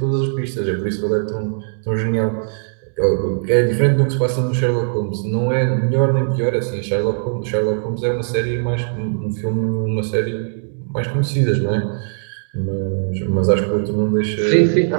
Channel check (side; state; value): left; silent; digital silence